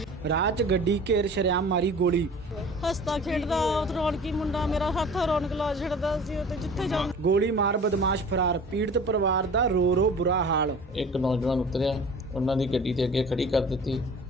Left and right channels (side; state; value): both; normal; correlation 0.43